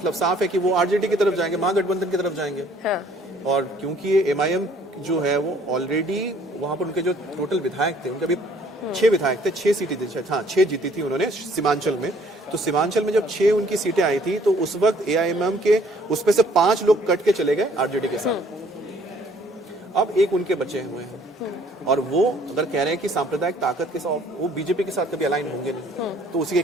साफ है कि वो आरजेडी की तरफ जाएंगे, महागठबंधन की तरफ जाएंगे। हाँ। और क्योंकि ये MIM जो है वो ऑलरेडी वहां पर उनके जो टोटल विधायक थे, उनके अभी 6 विधायक थे, 6 सीटें थी, हाँ 6 जीती थी उन्होंने सीमांचल में। तो सीमांचल में जब 6 उनकी सीटें आई थी, तो उस वक्त AIMIM के उसमें से 5 लोग कट के चले गए आरजेडी के साथ। अब एक उनके बचे हुए हैं और वो अगर कह रहे हैं कि सांप्रदायिक ताकत के साथ वो बीजेपी के साथ कभी अलाइन होंगे नहीं, तो उसी के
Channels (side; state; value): both; normal; correlation 0.60